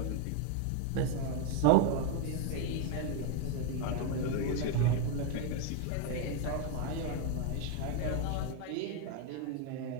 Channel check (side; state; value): both; different; correlation 0.01